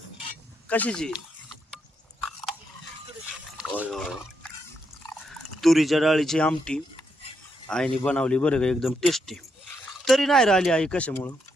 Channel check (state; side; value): normal; both; correlation 0.80